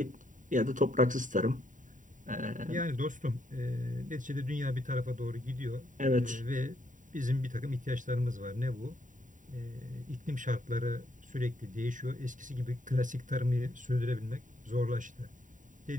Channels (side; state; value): left; late; 0.37 ms